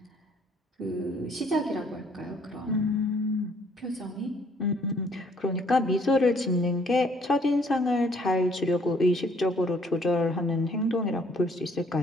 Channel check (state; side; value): normal; both; correlation 0.63